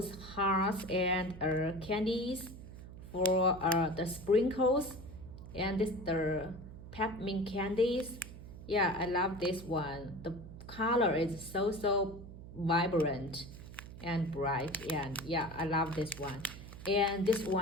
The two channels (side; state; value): right; noise; hum, 14 dB below the sound